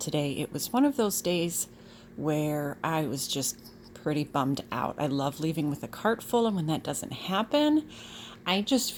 It was one of those days where I was just pretty bummed out. I love leaving with a cart full, and when that doesn't happen, I just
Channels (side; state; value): both; identical; correlation 1.00